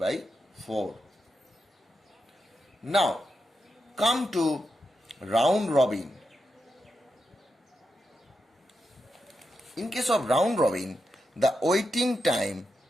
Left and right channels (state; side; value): normal; both; correlation 0.86